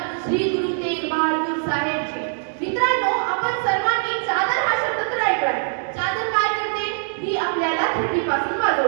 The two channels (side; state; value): left; silent; digital silence